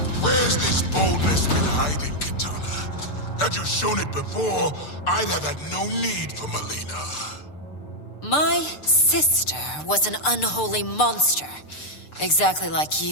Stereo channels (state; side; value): late; right; 6.7 ms